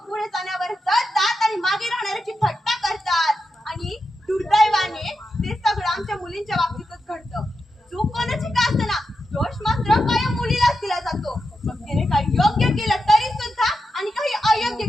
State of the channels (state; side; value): normal; both; correlation 0.88